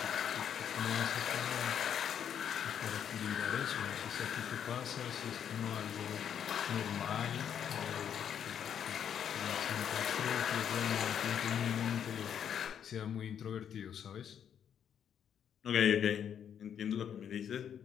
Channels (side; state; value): right; quieter; 8.7 dB